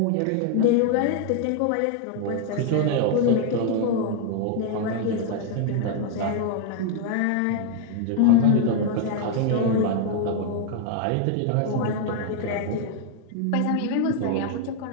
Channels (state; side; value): different; both; correlation 0.00